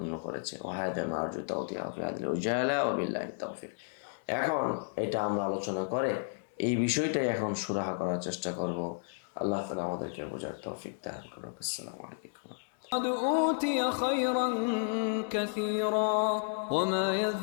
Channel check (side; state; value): right; silent; digital silence